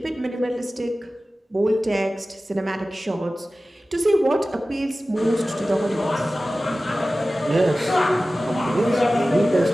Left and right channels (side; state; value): both; normal; correlation 0.96